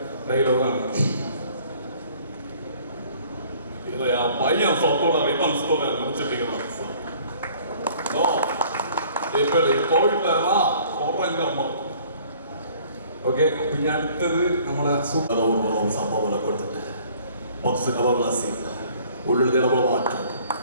ഡയലോഗാണ്. പയ്യൻ സ്വത്തോടെ റിബൺസ്തോടെ മുറിച്ചിട്ടിരിക്കണം. ഓക്കെ, പിന്നെ അടുത്തത് നമ്മളെ സംഭവങ്ങളെ കൊടുത്തിട്ട് ബോക്സ് കവർലാസി ഉള്ളിൽ ഇടപെട മാറ്റം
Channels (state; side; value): inverted; both; correlation -0.55